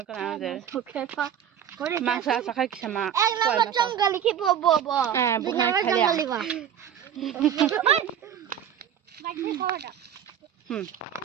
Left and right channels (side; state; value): left; quieter; 9.4 dB